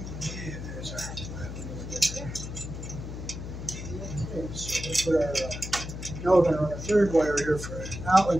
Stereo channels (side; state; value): left; noise; hum, 8 dB below the sound